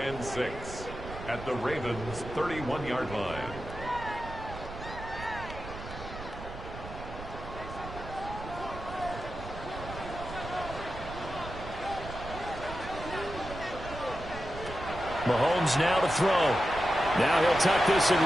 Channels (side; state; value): right; noise; rumble, 11 dB below the sound